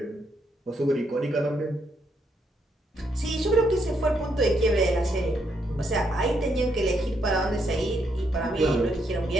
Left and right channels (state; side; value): normal; both; correlation 0.76